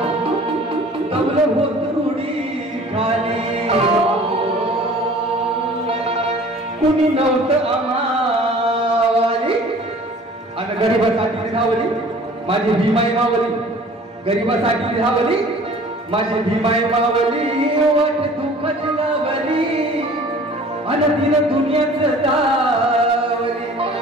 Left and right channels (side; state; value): both; normal; correlation 0.48